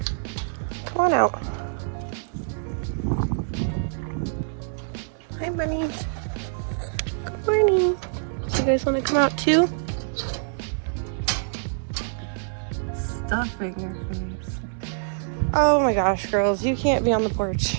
Come on out. Hi, bunnies. Good morning. You guys want to come out too? Stuffing your face. Oh my gosh, girls, you can't be on the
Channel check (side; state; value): left; silent; digital silence